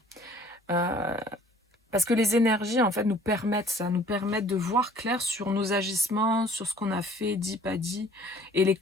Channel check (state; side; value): normal; both; correlation 0.54